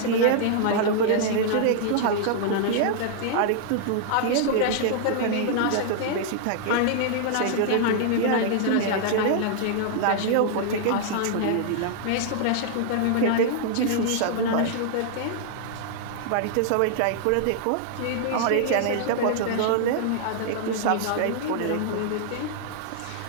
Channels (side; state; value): both; different; correlation -0.01